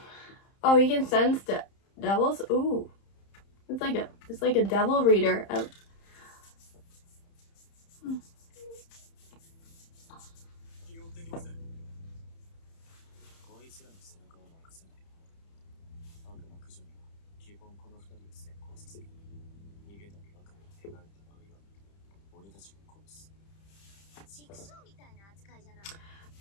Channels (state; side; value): late; right; 30 ms